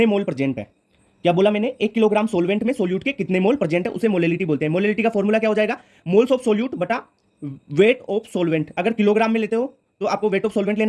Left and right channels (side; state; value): both; identical; correlation 1.00